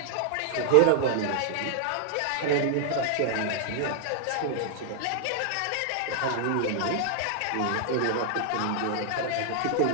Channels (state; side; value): different; both; correlation -0.01